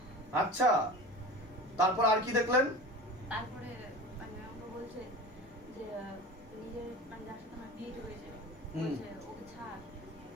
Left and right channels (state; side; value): normal; both; correlation 0.35